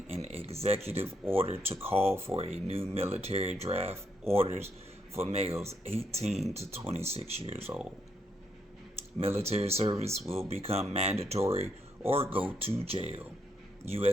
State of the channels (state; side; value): normal; both; correlation 0.76